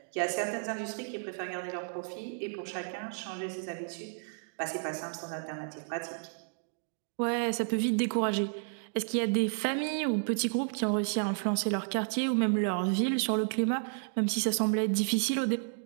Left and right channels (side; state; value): left; silent; digital silence